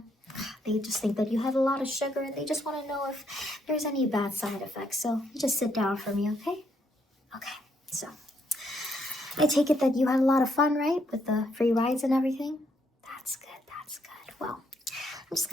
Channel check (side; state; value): both; normal; correlation 0.73